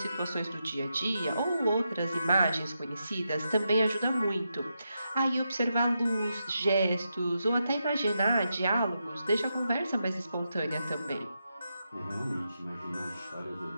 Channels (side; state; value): both; inverted; correlation -0.85